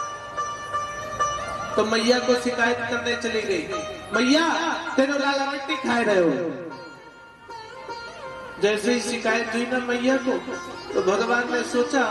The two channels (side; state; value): both; identical; correlation 1.00